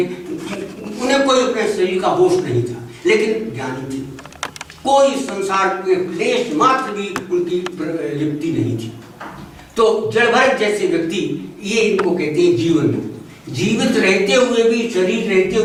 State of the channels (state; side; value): identical; both; correlation 1.00